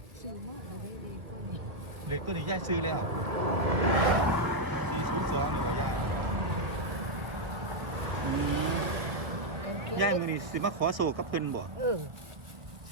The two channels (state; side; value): late; left; 1.1 ms